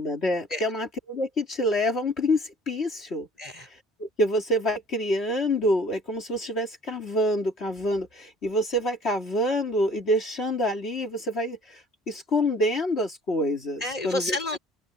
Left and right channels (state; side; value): normal; both; correlation 0.52